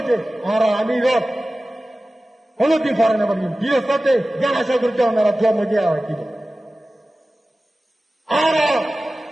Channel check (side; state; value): both; normal; correlation 0.96